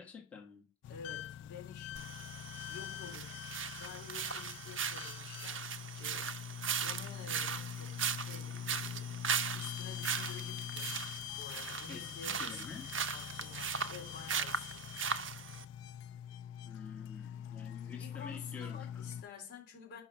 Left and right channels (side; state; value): both; normal; correlation 0.16